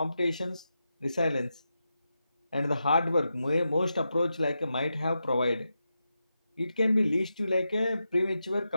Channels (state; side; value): inverted; both; correlation -0.88